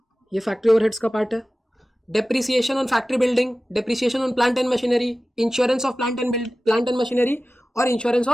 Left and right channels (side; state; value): both; normal; correlation 0.96